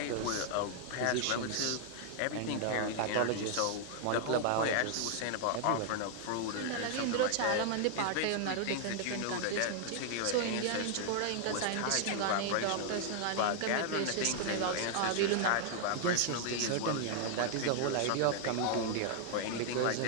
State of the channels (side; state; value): both; different; correlation 0.00